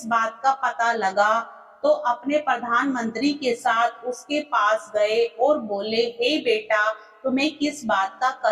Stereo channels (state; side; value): identical; both; correlation 1.00